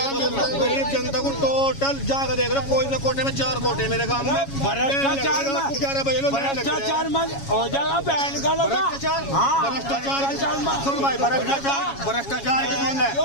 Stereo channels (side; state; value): right; late; 7.2 ms